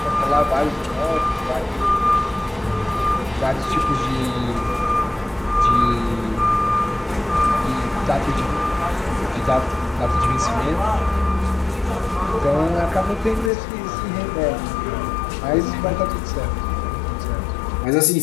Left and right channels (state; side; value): drops out; right; at 13.5 s